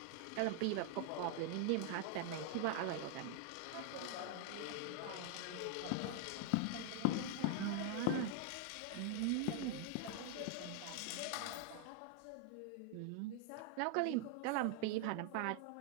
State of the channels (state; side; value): different; both; correlation 0.00